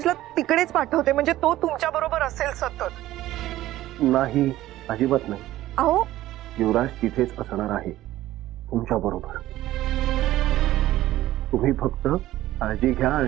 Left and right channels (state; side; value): quieter; left; 15.0 dB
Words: तिकडेच पाठवते. म्हणजे तो तुमच्या बरोबर असेल सतत. नाही, अजिबात नाही. अहो युवराज तिथेच असणार आहे तुमच्या बरोबर. तुम्ही फक्त काळजी घ्या